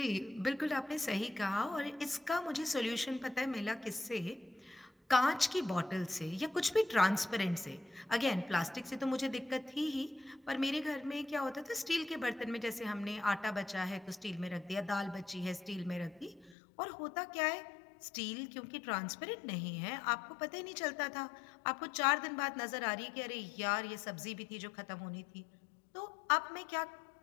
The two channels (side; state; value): right; drops out; at 16.6 s